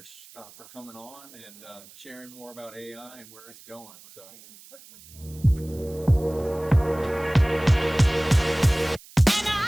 for coming on and sharing more about AI and where it's going. So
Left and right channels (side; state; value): right; noise; hiss, 22 dB below the sound